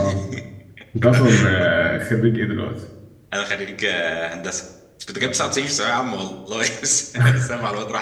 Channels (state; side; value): identical; both; correlation 1.00